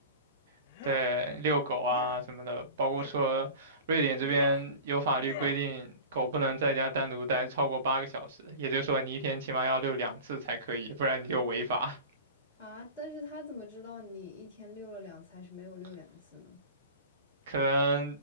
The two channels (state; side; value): inverted; both; correlation -0.34